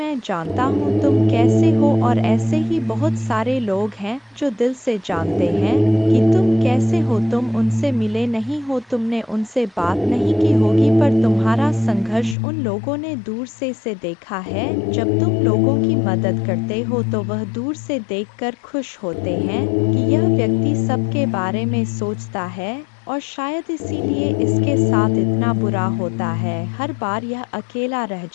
जानता हूँ तुम कैसे हो। और ऐसे ही बहुत सारे लोग हैं जो दिल से जानते हैं कि तुम कैसे हो। तुम उनसे मिले नहीं हो, तुमने उनसे बात नहीं की होगी, पर तुम्हारा संघर्ष उन लोगों ने दूर से देखा है। जब तुम लोगों की मदद करते हो तो वह दूर से देखकर खुश होते हैं कि यह व्यक्ति सबके बारे में सोचता है, और शायद इसीलिए इसके साथ इतना बुरा होता है। हर बार यह अकेला रह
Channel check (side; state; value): right; drops out; at 12.4 s